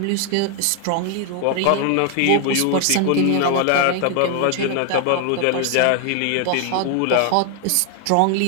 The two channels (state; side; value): different; both; correlation 0.00